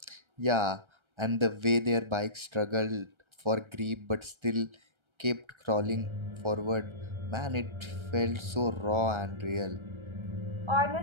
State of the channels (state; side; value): late; left; 1.3 ms